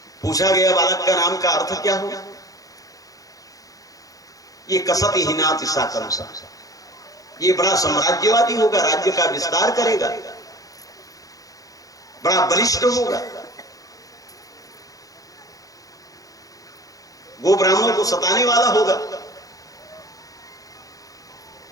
पूछा गया बालक का नाम का अर्थ क्या होगा? ये कसति हिनाति सा कंसा, ये बड़ा साम्राज्यवादी होगा, राज्य का विस्तार करेगा, बड़ा बलिष्ठ होगा। गो ब्राह्मणों को सताने वाला होगा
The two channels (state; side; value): late; right; 0.17 ms